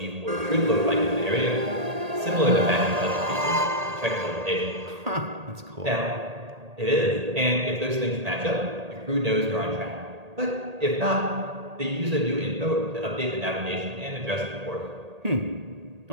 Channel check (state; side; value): late; left; 1.8 ms